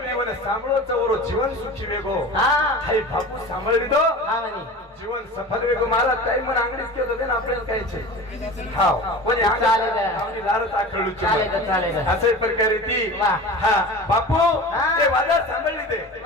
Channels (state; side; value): normal; both; correlation 0.35